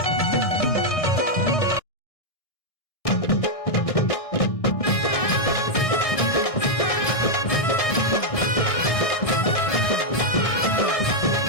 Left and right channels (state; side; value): late; right; 1.6 ms